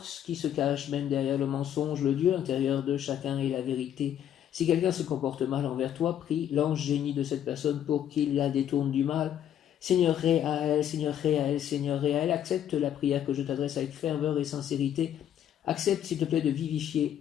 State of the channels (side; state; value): right; quieter; 10.2 dB